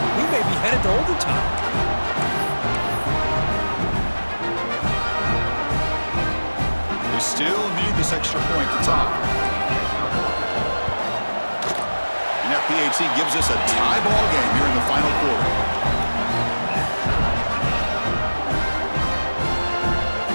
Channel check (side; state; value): both; inverted; correlation -1.00